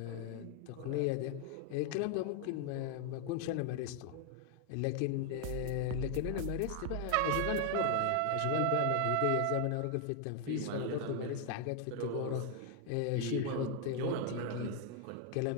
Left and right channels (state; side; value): different; both; correlation 0.00